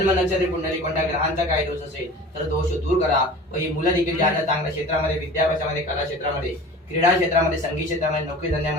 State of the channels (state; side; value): normal; both; correlation 0.40